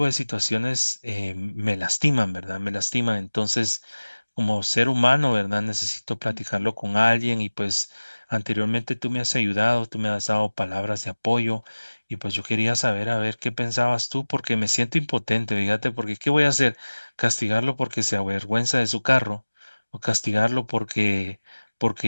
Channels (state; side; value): inverted; both; correlation -1.00